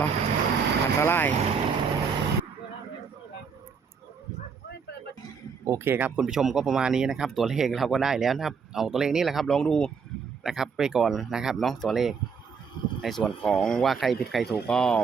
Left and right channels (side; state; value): left; quieter; 5.8 dB